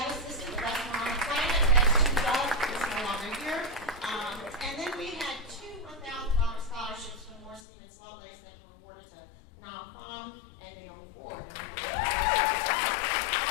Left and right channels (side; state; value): right; drops out; at 7.6 s